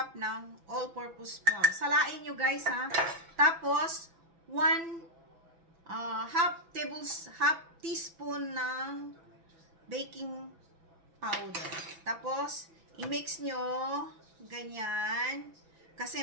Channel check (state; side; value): late; left; 6.1 ms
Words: ng all-purpose flour. Salain nyo guys ha. Tapos, half teaspoon ng baking powder. Tapos, i-mix nyo ganyan.